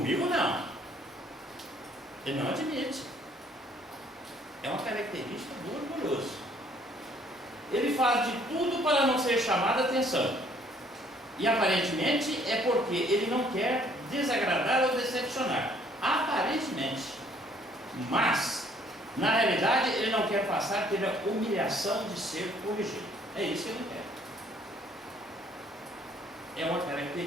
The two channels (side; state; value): both; normal; correlation 0.62